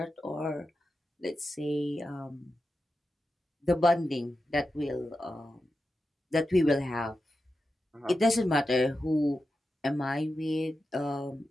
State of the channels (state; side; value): normal; both; correlation 0.90